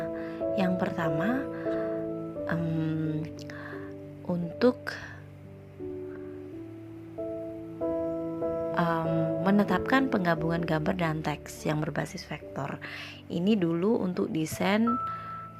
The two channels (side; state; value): both; identical; correlation 1.00